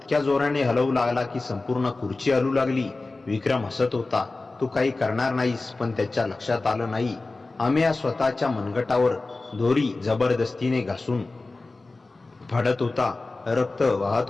जोराने हलवू लागला की संपूर्ण खुर्ची हलू लागली. विक्रम हसत होता. तू काही करणार नाहीस, पण त्याच्या लक्षात आलं नाही. अमेया स्वतःच्या मनगटावर दोरी जबरदस्तीने घासून फाडत होता. रक्त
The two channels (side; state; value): right; quieter; 3.4 dB